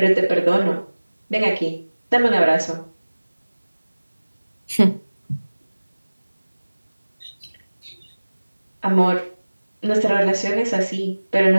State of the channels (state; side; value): inverted; both; correlation -1.00